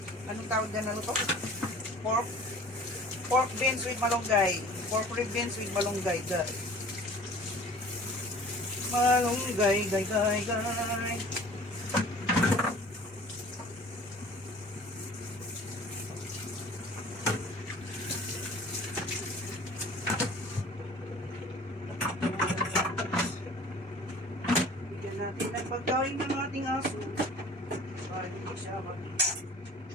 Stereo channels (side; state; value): both; normal; correlation 0.46